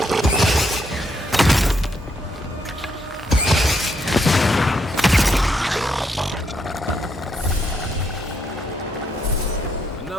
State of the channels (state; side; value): normal; both; correlation 0.76